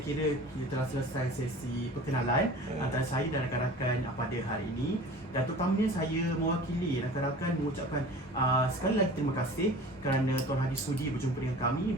kita telah selesai sesi perkenalan antara saya dan rakan-rakan pada hari ini. Dan terutamanya saya mewakili rakan-rakan mengucapkan sekali lagi terima kasih kerana Tuan Haji sudi berjumpa dengan kami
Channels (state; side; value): normal; both; correlation 0.41